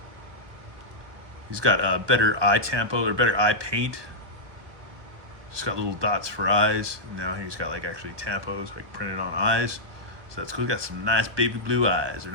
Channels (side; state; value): left; late; 1.2 ms